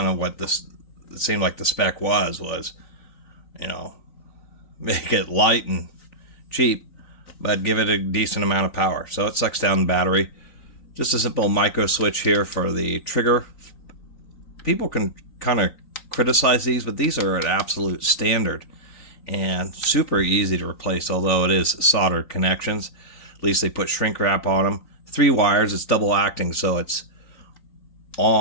of what this, it seemed like the spec was, you know, make it light and cheap, but give it a decent amount of power. So it sucks down the battery. Just a simple micro switch here for the trigger. People can kind of criticize these, but these are an absolute standard and super easy to replace, although it is soldered connections. At least they put shrink wrap on them. 3 wires, it's double acting, so it's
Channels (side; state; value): right; late; 3.9 ms